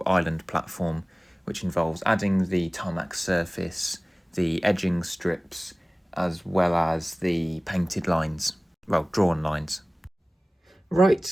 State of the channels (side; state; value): both; normal; correlation 0.98